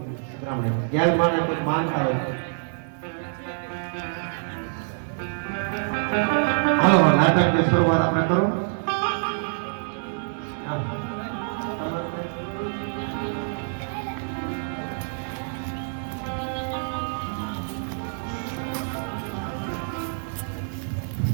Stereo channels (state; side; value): silent; left; 58 dB below the other